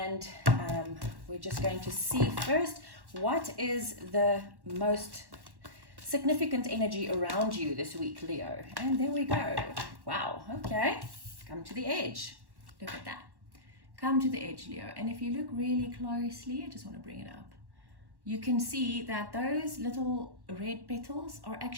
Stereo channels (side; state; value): left; late; 1.1 ms